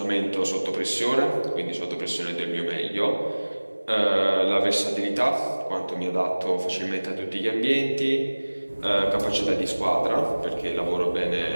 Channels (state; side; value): inverted; both; correlation -1.00